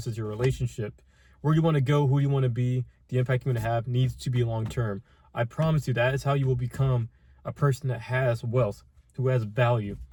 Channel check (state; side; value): identical; both; correlation 1.00